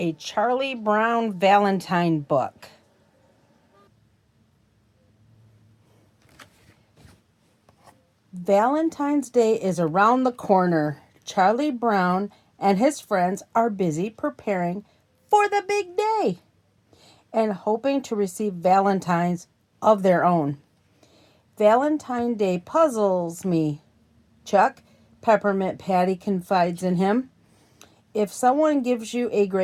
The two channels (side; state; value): both; identical; correlation 1.00